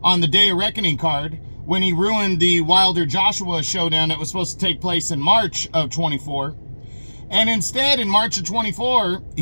on the Day of Reckoning card, when he ruined the Wilder-Joshua showdown that was supposed to take place in March of 24. And instead, in March of 24,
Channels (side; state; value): both; inverted; correlation -1.00